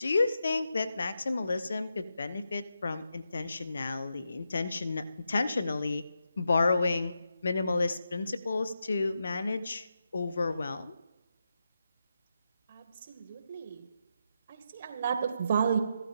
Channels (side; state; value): both; inverted; correlation -0.85